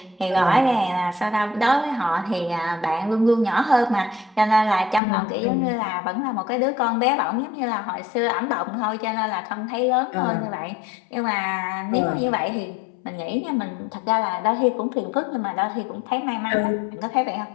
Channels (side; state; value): right; drops out; at 5.0 s